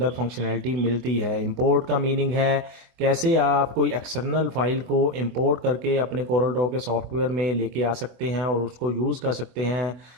फंक्शनैलिटी मिलती है। इंपोर्ट का मीनिंग है कैसे आप कोई एक्सटर्नल फाइल को इंपोर्ट करके अपने कोरल ड्रॉ के सॉफ्टवेयर में लेके आ सकते हैं और उसको यूज़ कर सकते हैं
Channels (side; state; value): left; late; 24 ms